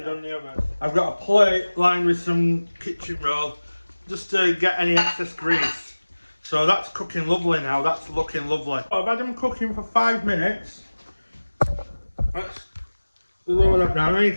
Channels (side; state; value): both; inverted; correlation -1.00